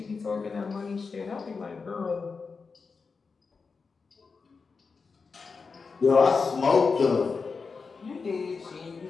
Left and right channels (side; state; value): right; quieter; 4.8 dB